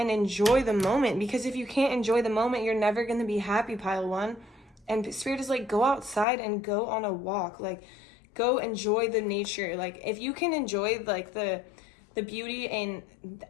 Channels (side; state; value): right; drops out; at 6.2 s